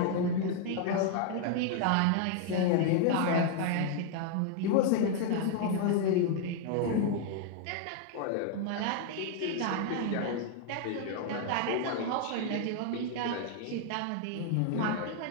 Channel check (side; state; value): both; different; correlation 0.00